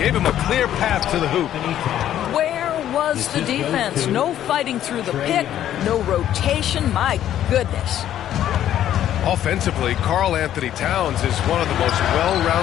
him a clear path to the hoop. Where was the defense? No fighting through the pick, no rotation. My goodness. Offensively, Karl Anthony Towns is one of the most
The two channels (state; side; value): quieter; right; 11.4 dB